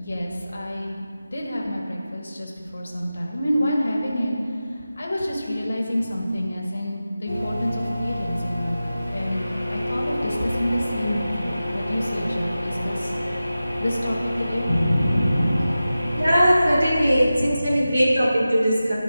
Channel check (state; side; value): inverted; both; correlation -0.94